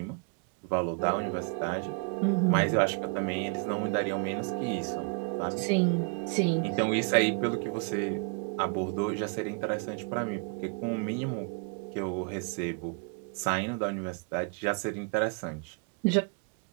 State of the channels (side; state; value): left; quieter; 36.1 dB